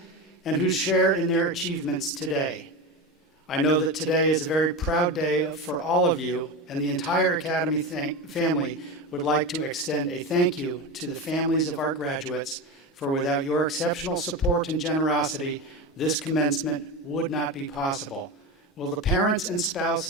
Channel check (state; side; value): normal; both; correlation 0.21